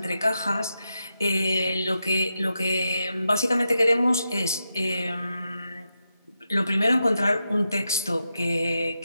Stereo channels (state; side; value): inverted; both; correlation -0.87